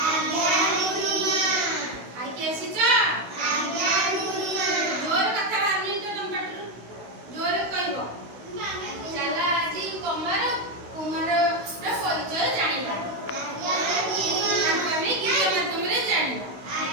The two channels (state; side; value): late; left; 16 ms